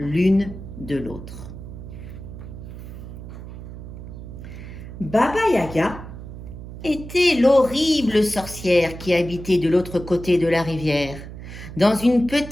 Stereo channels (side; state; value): right; noise; hum, 12 dB below the sound